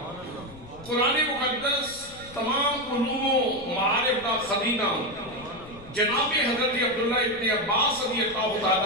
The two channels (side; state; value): left; noise; rumble, 19 dB below the sound